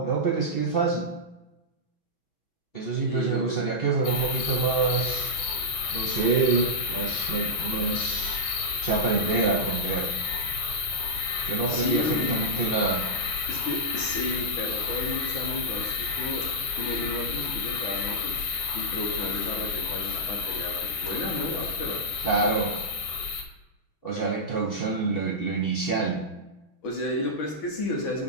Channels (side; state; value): right; late; 6.2 ms